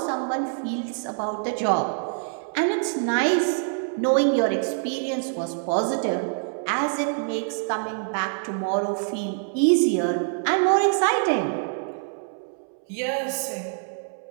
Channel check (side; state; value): left; silent; 62 dB below the other